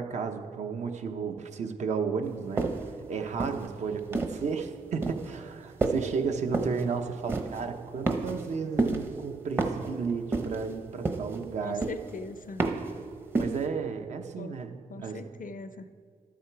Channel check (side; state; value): left; quieter; 4.0 dB